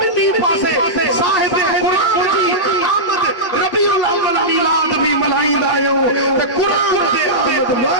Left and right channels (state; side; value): late; right; 8.5 ms